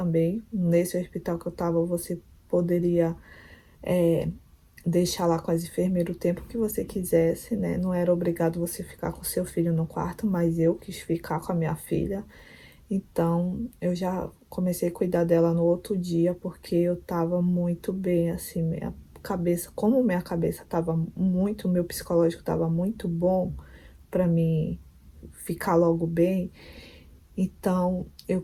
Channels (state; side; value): identical; both; correlation 1.00